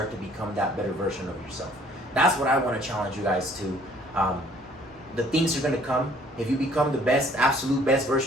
to become that better version of yourself. That's what I want to challenge you guys to. The things are going to come. If you become the best, absolute best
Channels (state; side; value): normal; both; correlation 0.58